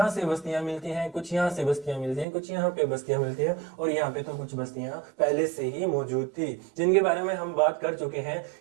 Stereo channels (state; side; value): drops out; left; at 2.2 s